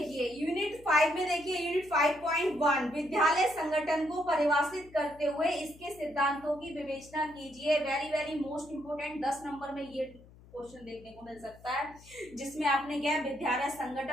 यूनिट 5 में देखिए यूनिट 5.1 विद्यालय संगठन को परिभाषित करते हुए इसके सिद्धांतों की विवेचना कीजिए। Very very most important, 10 number में ये क्वेश्चन देखने को मिल सकता है, जिसमें आपने क्या है विद्यालय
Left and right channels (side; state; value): left; noise; hum, 23 dB below the sound